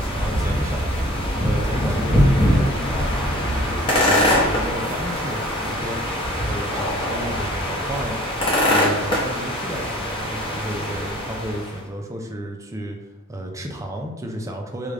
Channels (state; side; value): normal; both; correlation 0.49